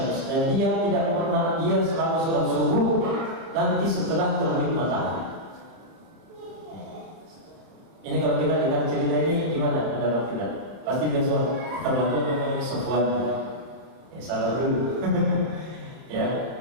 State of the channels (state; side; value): late; left; 30 ms